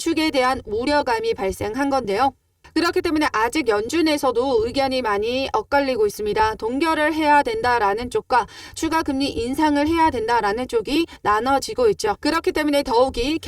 대한 우려감이 발생한 건데요. 그렇기 때문에 아직 연준에서도 의견이 많이 엇갈리고 있습니다. 동결을 해야 된다라는 쪽과 추가 금리 인상을 해야 된다라는 쪽이 나눠지고 있죠. 그렇기 때문에 더욱이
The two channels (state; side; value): identical; both; correlation 1.00